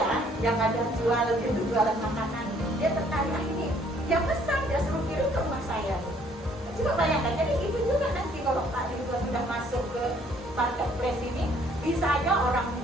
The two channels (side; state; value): both; normal; correlation 0.62